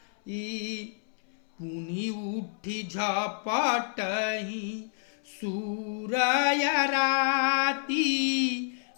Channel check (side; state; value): right; silent; 58 dB below the other